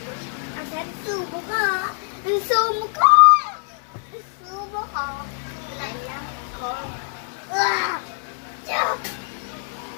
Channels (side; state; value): right; silent; digital silence